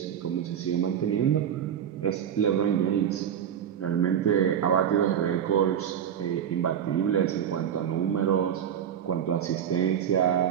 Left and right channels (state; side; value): quieter; left; 9.1 dB